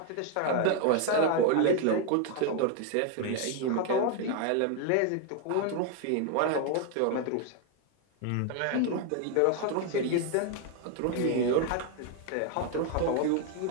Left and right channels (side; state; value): both; different; correlation 0.01